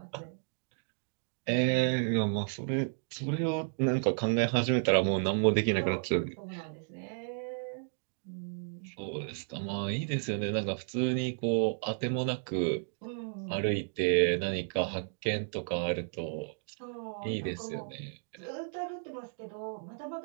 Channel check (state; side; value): silent; left; digital silence